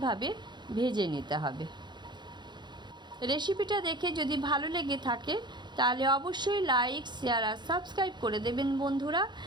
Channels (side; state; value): left; late; 0.21 ms